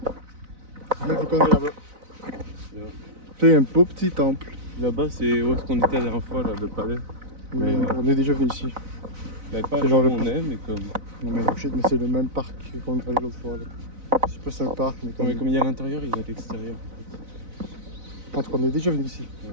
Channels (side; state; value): left; late; 4.0 ms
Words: Mais faut qu'on aille là-bas. Yeah. C'est un beau petit temple. Là-bas, c'est où est-ce qu'on était la dernière fois, là, le palais. Oui, Mais, on est déjà venu ici. Mais pas C'est genre où le on parc. est, mais comme. Non mais shit, mais c'est le même parc qu'on est allé l'autre fois. Là. C'est pas un parc, mais Non, comme. mais comme il y a à l'intérieur, il y a à l'extérieur. En tout cas, on est déjà venu ici. Ouais.